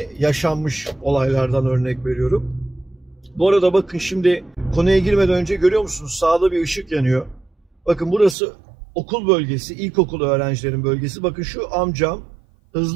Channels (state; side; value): drops out; left; at 8.3 s